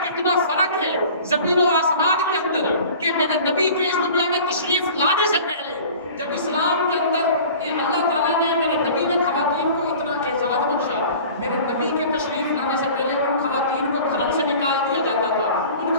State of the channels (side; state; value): both; inverted; correlation -0.43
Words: کتنا فرق ہے زمین و آسمان کے اندر. کہ میرے نبی کے اس دنیا میں تشریف لانے سے پہلے جب اسلام کے اندر اللہ تعالیٰ نے میرے نبی نے خواتین کو اتنا اعزاز بخشا, میرے نبی کے تشریف لانے سے پہلے ان خواتین کو گھروں سے نکال دیا جاتا تھا, ان